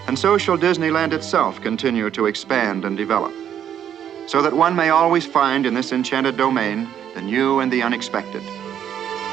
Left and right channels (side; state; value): left; quieter; 9.6 dB